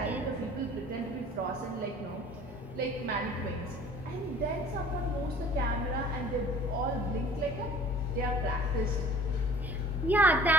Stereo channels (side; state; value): both; normal; correlation 0.48